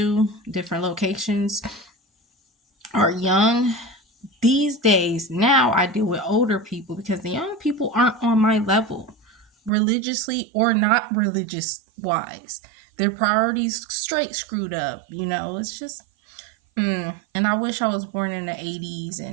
different locations, are young. These days, now I deal with older people because the young people aren't on my level, religiously or not religious wise. Their priorities straight screwed up. It's just, and I wish I was born in the 80s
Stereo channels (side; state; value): left; drops out; at 9.7 s